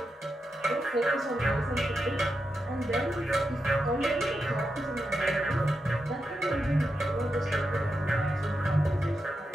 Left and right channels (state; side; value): normal; both; correlation 0.87